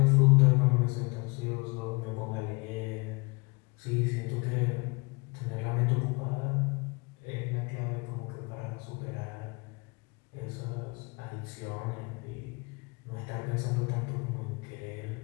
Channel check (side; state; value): right; quieter; 28.6 dB